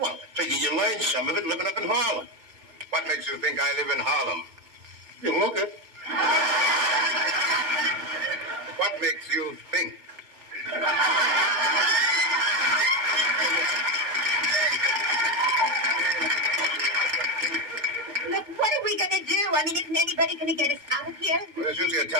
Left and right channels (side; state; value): left; late; 2.2 ms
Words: I figure you learned some of it living up in Harlem. What makes you think I live in Harlem? You look it. What makes you think? Look, what are we going to do? I mean, isn't anybody going to get us out of here? Well, there's usually a